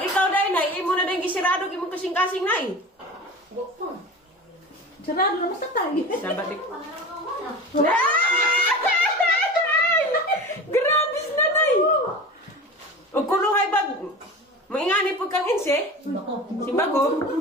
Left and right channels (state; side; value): normal; both; correlation 0.33